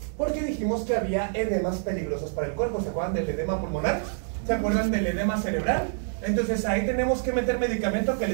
Porque dijimos que había edemas peligrosos para el cuerpo. ¿Se acuerdan del edema pulmonar? ¿Se acuerdan del edema cerebral? Entonces ahí tenemos que meter medicamento que le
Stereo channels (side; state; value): left; silent; 60 dB below the other